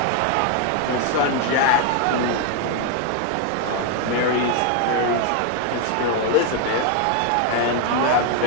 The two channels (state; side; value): different; both; correlation 0.01